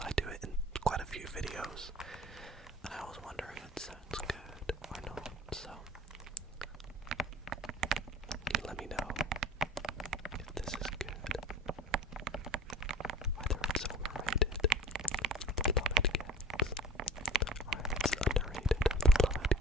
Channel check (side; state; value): both; normal; correlation 0.42